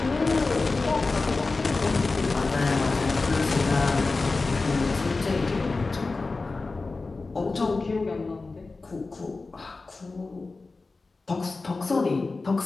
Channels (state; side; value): quieter; right; 3.7 dB